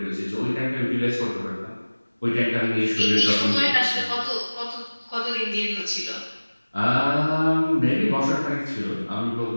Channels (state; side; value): inverted; both; correlation -1.00